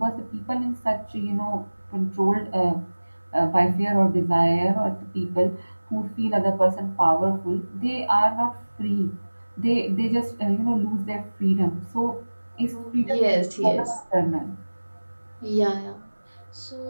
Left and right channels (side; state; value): both; inverted; correlation -1.00